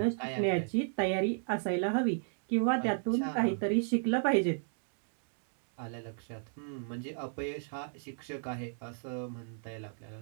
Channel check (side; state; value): left; silent; digital silence